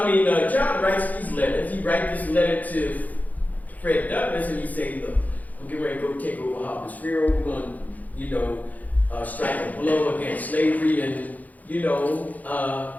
writes these letters. He writes this letter to Fred Douglass, and he says, look, I'm getting ready to go take over Harper's Ferry. We're going to, strike a blow against slavery and,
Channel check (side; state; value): right; late; 0.079 ms